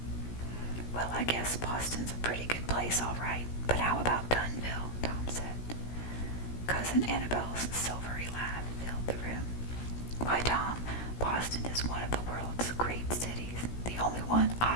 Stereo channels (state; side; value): late; right; 16 ms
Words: Well, I guess Boston's a pretty good place, all right, but how about Dunville? Tom said. Cousin Annabel's silvery laugh filled the room. Why, Tom, Boston is one of the world's great cities, the only one